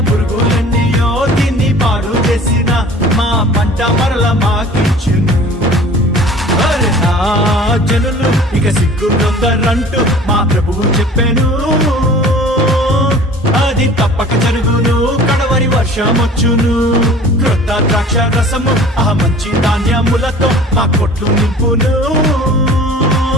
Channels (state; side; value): normal; both; correlation 0.45